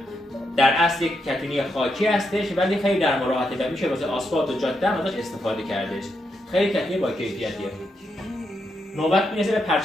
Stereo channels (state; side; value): normal; both; correlation 0.82